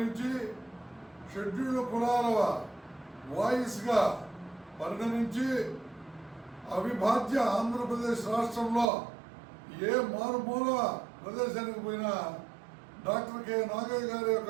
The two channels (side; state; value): left; drops out; at 8.8 s